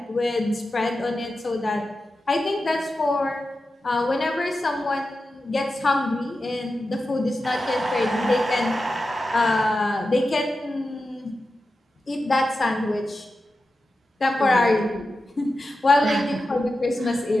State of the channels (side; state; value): both; normal; correlation 0.91